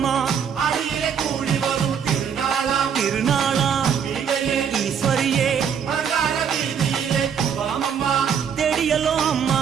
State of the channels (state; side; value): quieter; left; 7.5 dB